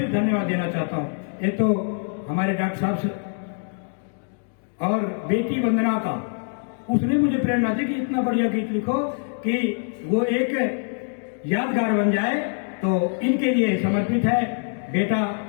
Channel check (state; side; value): silent; right; 56 dB below the other